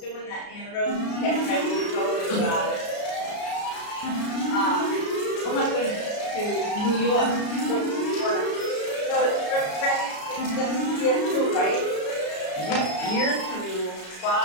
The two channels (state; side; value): late; right; 33 ms